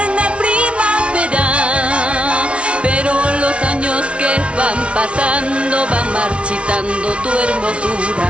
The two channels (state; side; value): late; left; 0.060 ms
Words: primavera. Pero los años que van pasando van marchitando tu hermosura.